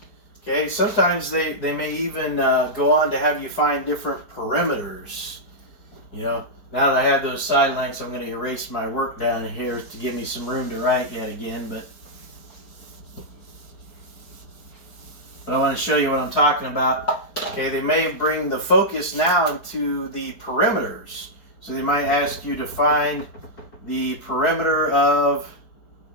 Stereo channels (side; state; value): right; late; 4.7 ms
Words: okay, sometimes they may even go on to have you find different perimeters. You know, now that I have those side lengths, I'm going to erase my work down here to give me some room to write yet again, but I want to show you what I'm talking about. Okay, they may bring the focus now into the perimeters. So they might ask you to find the perimeter of,